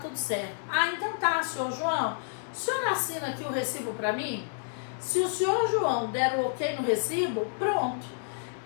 certo. Ah, então tá, senhor João. O senhor assina aqui o recibo para mim? Se o senhor João der o ok no recibo, pronto.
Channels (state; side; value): silent; right; digital silence